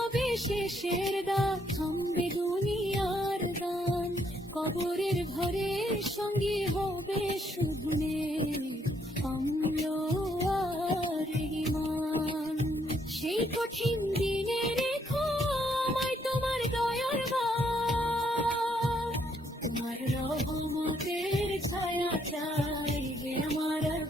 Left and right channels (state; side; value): normal; both; correlation 0.71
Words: শেষের দাগ, থামবে দুনিয়ার গান, কবরের ঘরে সঙ্গী হবে শুধু অম্ল আর ঈমান। সেই কঠিন দিনে রেখো আমায় তোমার দয়ার বাণ, তোমার রহমতের ছায়া চাই হে আমার